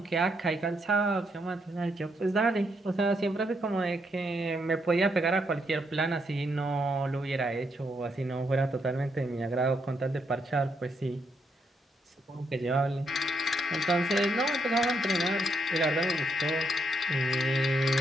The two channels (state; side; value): normal; both; correlation 0.78